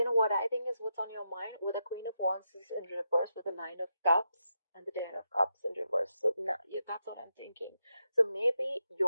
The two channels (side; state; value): both; inverted; correlation -0.85